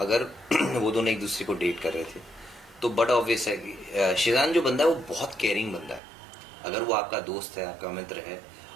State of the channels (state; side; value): drops out; left; at 6.0 s